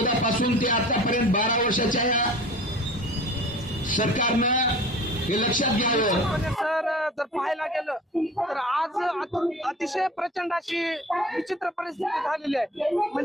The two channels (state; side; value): normal; both; correlation 0.42